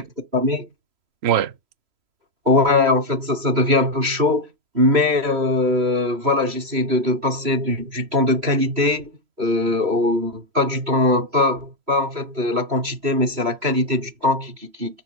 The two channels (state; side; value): late; left; 3.0 ms